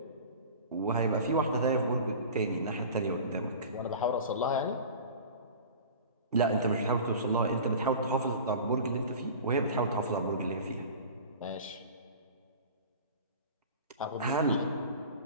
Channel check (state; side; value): inverted; both; correlation -0.38